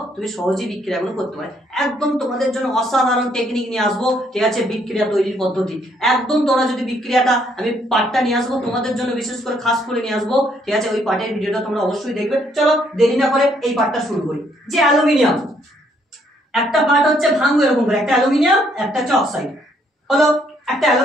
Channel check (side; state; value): both; normal; correlation 0.69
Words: তুমি সহজেই বিক্রিয়াগুলো করতে পারো। একদম তোমাদের জন্য অসাধারণ টেকনিক নিয়ে আসবো, ঠিক আছে, বিক্রিয়া তৈরির পদ্ধতি। একদম তোমরা যদি বিক্রিয়াটা, আমি পার্টটা নিয়ে আসবো তোমাদের জন্য, বিশেষ করে খাস করে নিয়ে আসবো, ঠিক আছে। ওই পার্টের ভিডিওটা তোমরা অবশ্যই দেখবে। চলো দেরি না করে এই পার্টটা শুরু করি। যে অ্যালুমিনিয়াম একটা পার্ট হচ্ছে ভাঙবো এরকম করে, একটা অ্যালুমিনিয়াম, একটা হচ্ছে অক্সাইড। হলো একটা